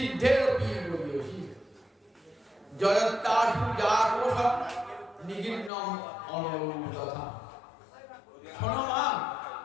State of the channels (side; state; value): right; drops out; at 5.7 s